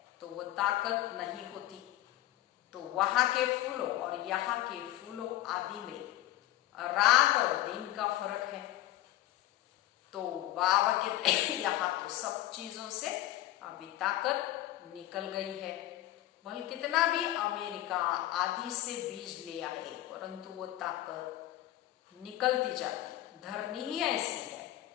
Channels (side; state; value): right; quieter; 14.7 dB